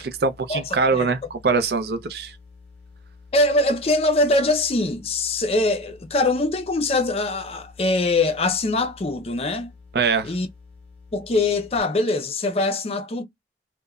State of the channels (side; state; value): both; normal; correlation 0.27